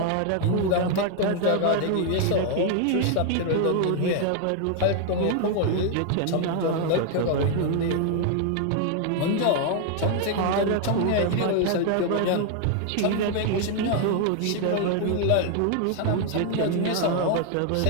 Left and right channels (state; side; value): different; both; correlation 0.00